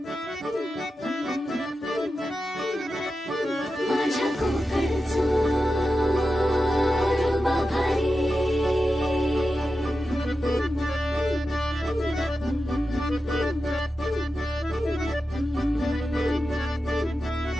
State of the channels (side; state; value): both; normal; correlation 0.91